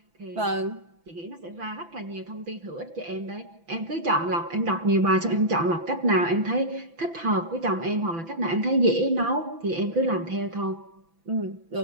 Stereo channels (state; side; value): late; left; 6.0 ms